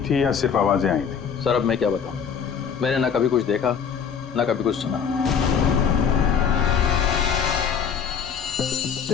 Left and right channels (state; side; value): quieter; right; 7.1 dB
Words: या सिर्फ आवाजें आई थी? सर अब मैं क्या बताऊं, मैंने ना कभी कुछ देखा ना कभी कुछ सुना।